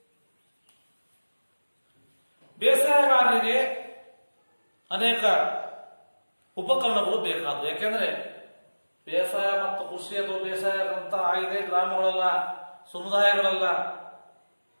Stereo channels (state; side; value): inverted; both; correlation -1.00